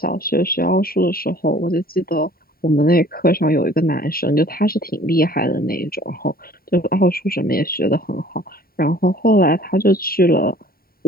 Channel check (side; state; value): right; late; 0.43 ms